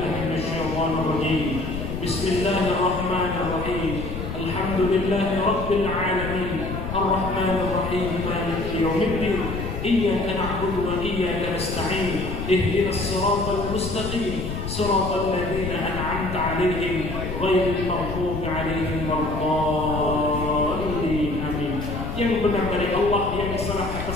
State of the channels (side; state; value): left; noise; rumble, 5 dB below the sound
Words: minasyaitonir rajim. Bismillahirrahmanirrahim. Alhamdulillahi rabbil alamin. Ar-Rahmanir Rahim. Maliki yaumiddin. إياك نعبد وإياك نستعين اهدنا الصراط المستقيم صراط الذين أنعمت عليهم غير المغضوب عليهم ولا الضالين آمين. Yang benar dari Allah, yang salah